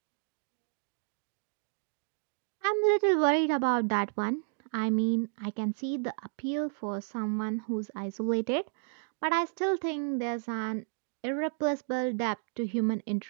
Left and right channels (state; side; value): silent; left; digital silence